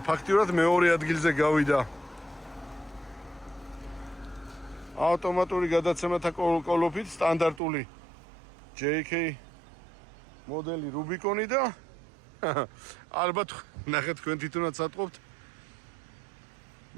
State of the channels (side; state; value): left; drops out; at 7.6 s